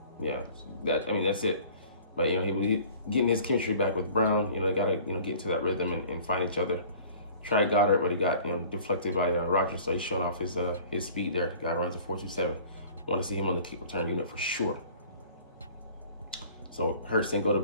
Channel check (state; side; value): inverted; both; correlation -0.48